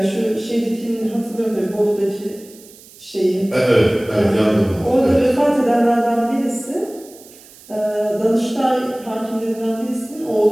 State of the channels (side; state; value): right; noise; hiss, 22 dB below the sound